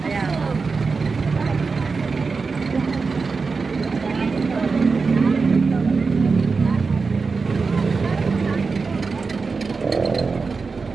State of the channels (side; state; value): left; quieter; 4.6 dB